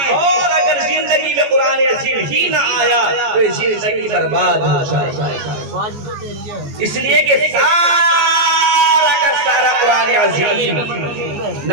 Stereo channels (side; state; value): left; late; 14 ms